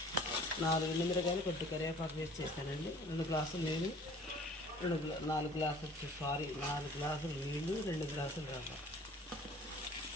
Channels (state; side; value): normal; both; correlation 0.50